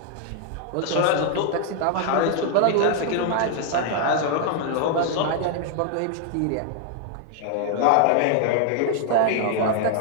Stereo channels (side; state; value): both; different; correlation 0.00